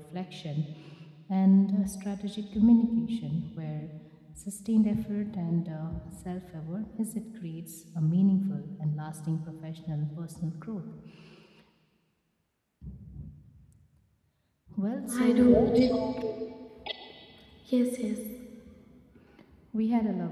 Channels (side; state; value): both; identical; correlation 1.00